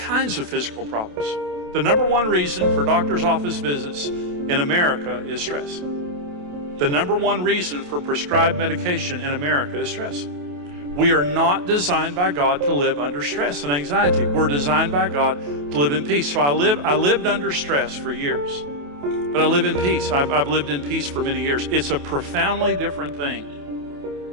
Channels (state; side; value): late; left; 28 ms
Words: of physical problems. The number one reason for doctor's office visits in America is stress. The number one reason for prescribed medication in America is stress. We are not designed by God to live under stress and anxiety. We're designed by God to live in peace. So I lived under stress for years, but I live in peace. I've lived in peace for many years. It's a profoundly different